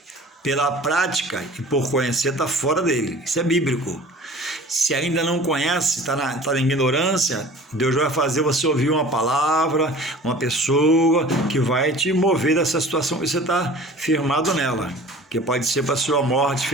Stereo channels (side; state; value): both; normal; correlation 0.44